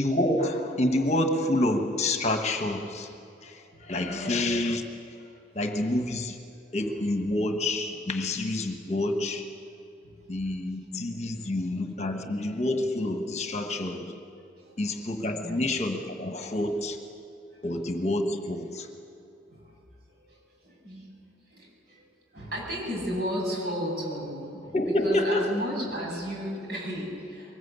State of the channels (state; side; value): normal; both; correlation 0.63